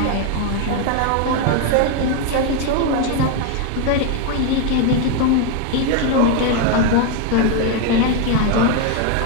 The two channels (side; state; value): both; different; correlation 0.01